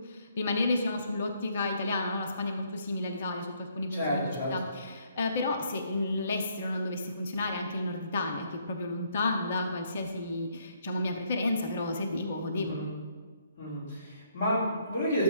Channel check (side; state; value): both; inverted; correlation -0.69